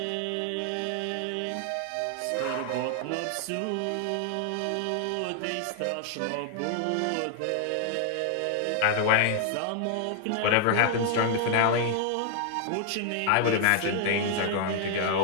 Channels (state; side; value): different; both; correlation 0.00